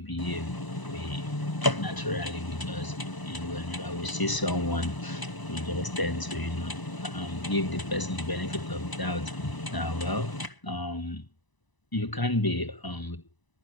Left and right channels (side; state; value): right; late; 1.0 ms